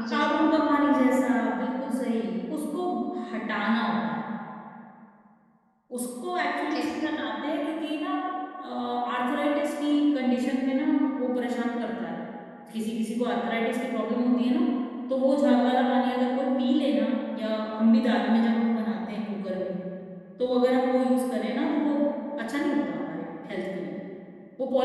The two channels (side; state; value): both; identical; correlation 1.00